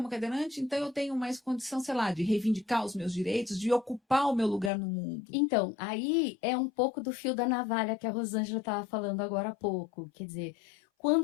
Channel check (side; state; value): right; drops out; at 4.7 s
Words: cadeirante, então eu tenho mais condição, sei lá, de reivindicar os meus direitos, de ocupar o meu lugar no mundo. Então, aí é um pouco do fio da navalha que a Rosângela estava falando agora há pouco. Quer dizer,